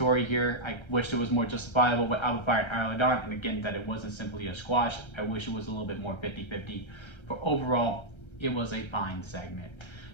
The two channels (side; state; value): right; late; 1.3 ms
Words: here. I wish it was more justifiable with Out of Fire and Isla Dawn, and again, that it wasn't simply a squash. I wish it was a little bit more 50-50. But overall, it was a fine segment.